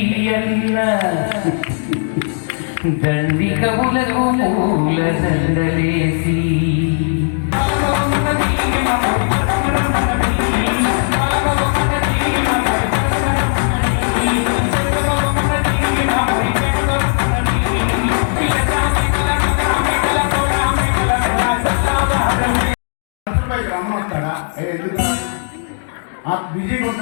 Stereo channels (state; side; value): silent; right; digital silence